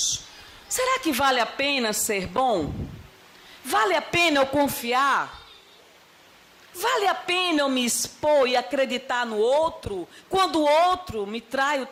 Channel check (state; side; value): identical; both; correlation 1.00